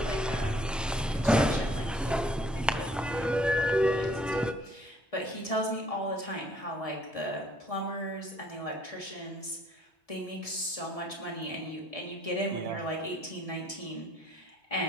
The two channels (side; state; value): both; normal; correlation 0.62